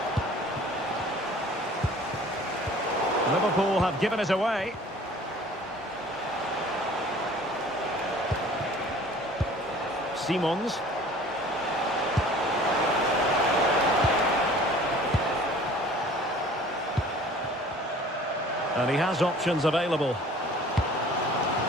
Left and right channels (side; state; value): both; normal; correlation 0.49